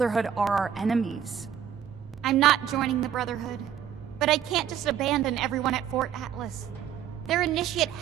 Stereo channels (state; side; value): quieter; left; 9.3 dB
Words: are our enemies. I'm not joining the Brotherhood, but I can't just abandon everyone at Fort Atlas. Their initiate